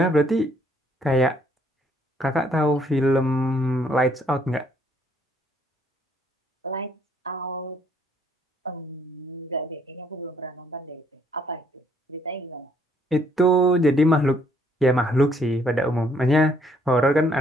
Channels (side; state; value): both; normal; correlation 0.67